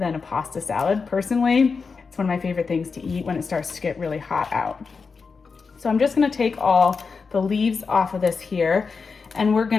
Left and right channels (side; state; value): right; quieter; 5.0 dB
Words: a pasta salad? Personally, it's one of my favorite things to eat when it starts to get really hot out. So I'm just gonna take all the leaves off of this here, and we're